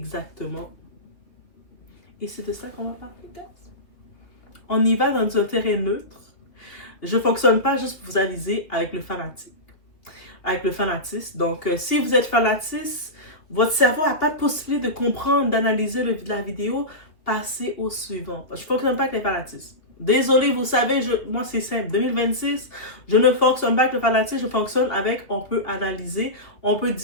Et c'est de ça qu'on va parler, guys. On y va dans un terrain neutre. Je ne fonctionne pas juste pour vous aviser avec le fanatisme. Donc, si vous êtes fanatiste, votre cerveau n'a pas de possibilité de comprendre, d'analyser la vidéo, passez au suivant. Je ne fonctionne pas avec les fanatismes. Désolé, vous savez, moi c'est simple. 2026, je ne fonctionne pas avec le fanatisme, je fonctionne avec, on peut analyser, on peut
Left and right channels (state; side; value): late; right; 2.6 ms